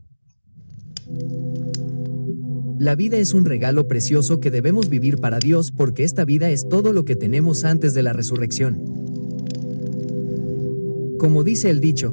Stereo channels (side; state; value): both; inverted; correlation -1.00